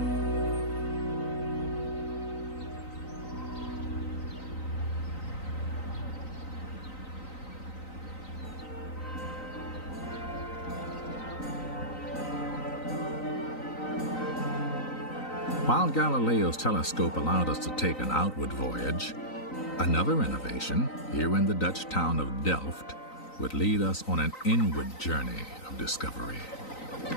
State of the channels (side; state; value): right; late; 3.9 ms